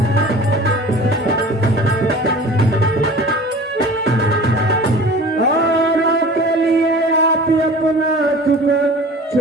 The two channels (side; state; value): both; normal; correlation 0.42